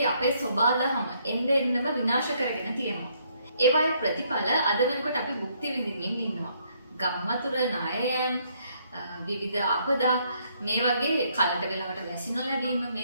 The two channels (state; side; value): inverted; both; correlation -0.69